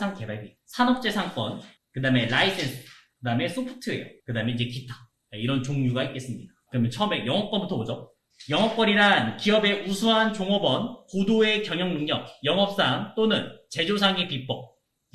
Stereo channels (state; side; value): identical; both; correlation 1.00